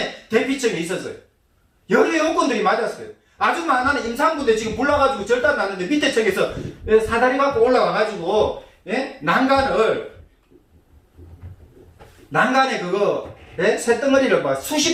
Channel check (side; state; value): both; identical; correlation 1.00